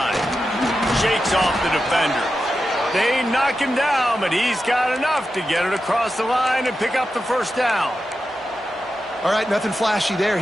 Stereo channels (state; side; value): normal; both; correlation 0.90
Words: Shakes off the defender. They knock him down, but he's got enough to get it across the line and pick up the first down. All right, nothing flashy there.